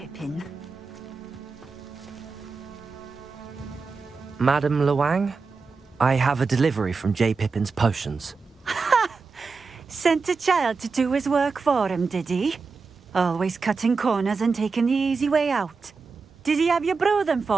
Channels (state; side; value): quieter; left; 4.6 dB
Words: Madam Luang, I have a delivery from J. Pippin's Potions. Sent a child to do his work for him, did he? Always cutting corners and taking the easy way out. Did he have you brew them